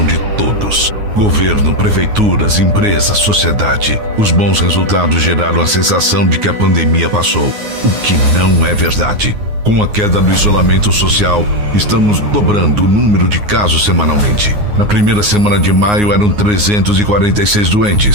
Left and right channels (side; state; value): left; late; 9.6 ms